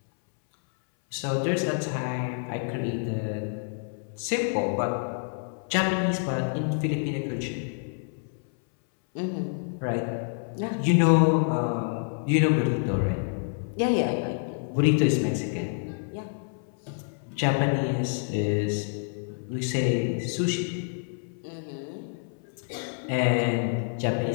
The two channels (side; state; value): right; silent; 60 dB below the other